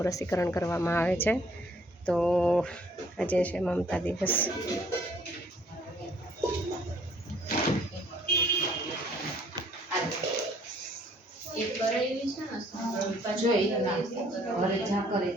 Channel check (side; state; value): both; normal; correlation 0.61